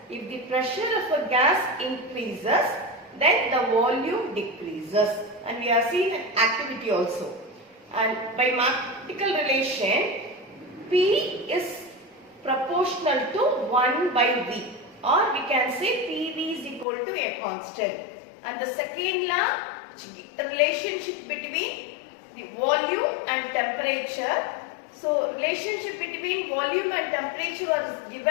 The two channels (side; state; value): right; drops out; at 16.9 s